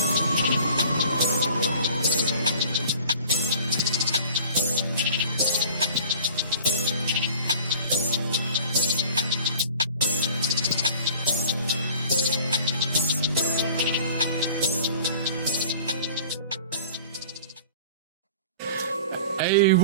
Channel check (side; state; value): both; inverted; correlation -0.44